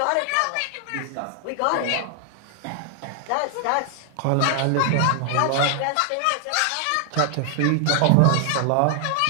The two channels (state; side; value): different; both; correlation 0.00